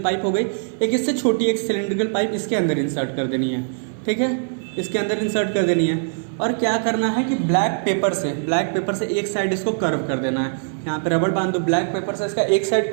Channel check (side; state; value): left; silent; 57 dB below the other